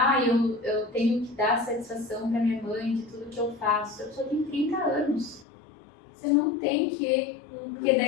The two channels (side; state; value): right; drops out; at 5.5 s